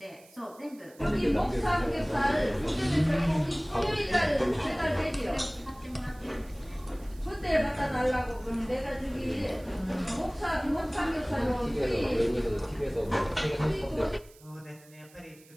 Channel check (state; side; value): noise; right; hiss, 25 dB below the sound